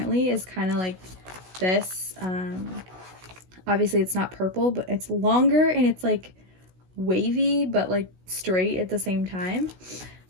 is kind of like this. Obviously it's not purple, but it's longer and it's like wavy but like straight at the same time.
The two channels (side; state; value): left; late; 16 ms